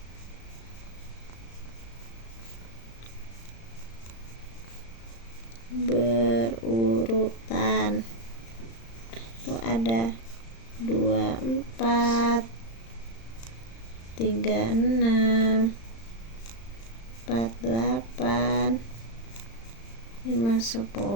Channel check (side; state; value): right; late; 35 ms